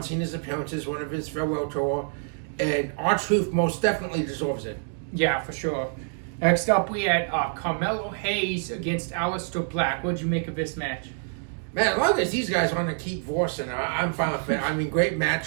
Cena's appearances, one of his farewell tour. And R-Truth most definitely deserves it. Yeah, for sure. Next up, we had Carmelo Hayes against Aleister Black. What did you make of this match? Man, as long as these guys want to keep forcing, I'm fine with it. I mean, great match,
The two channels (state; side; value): silent; left; 61 dB below the other